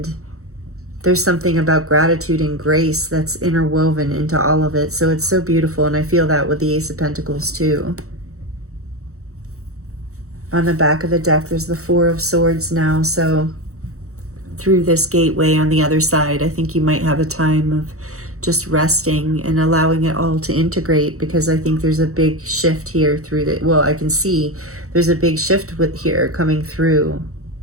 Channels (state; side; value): late; left; 0.64 ms